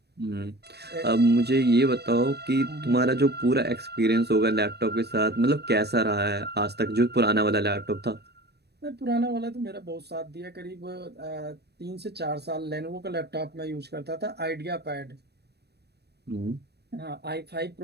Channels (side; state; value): left; late; 0.48 ms